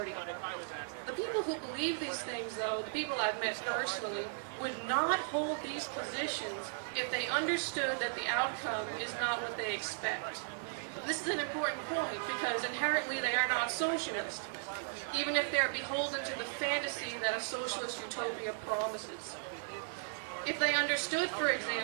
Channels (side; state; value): left; silent; digital silence